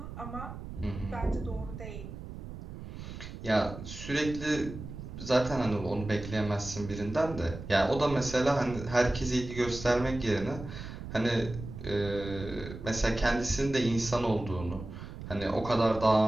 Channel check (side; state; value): right; noise; rumble, 10 dB below the sound